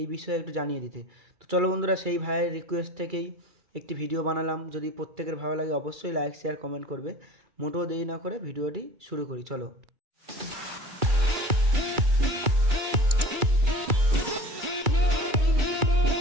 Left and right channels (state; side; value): late; left; 2.3 ms